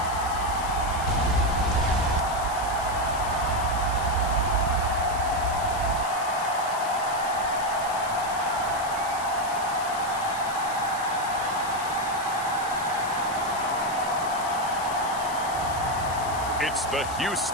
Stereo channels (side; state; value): left; noise; hiss, 12 dB below the sound